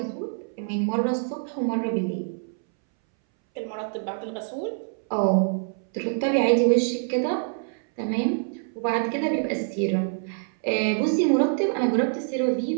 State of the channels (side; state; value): left; silent; 61 dB below the other